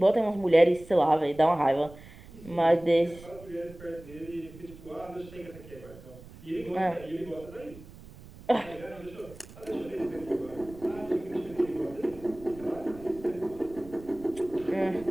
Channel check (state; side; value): noise; right; rumble, 19 dB below the sound